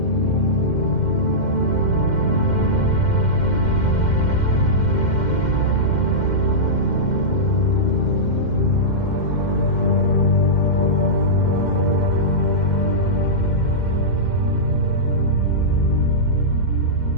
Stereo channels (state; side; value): late; right; 2.1 ms